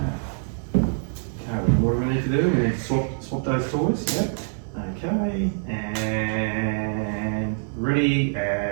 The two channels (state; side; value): silent; left; 59 dB below the other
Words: what do we need to do? We need to swap those toys, yep. Okay, and ready,